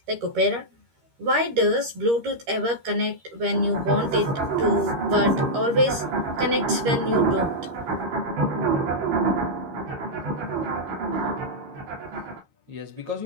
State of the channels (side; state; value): left; late; 13 ms